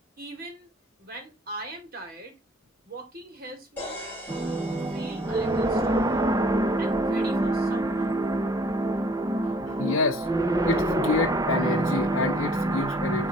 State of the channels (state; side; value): normal; both; correlation 0.55